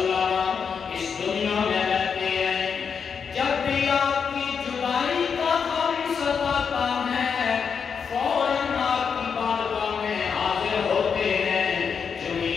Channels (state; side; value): quieter; right; 6.4 dB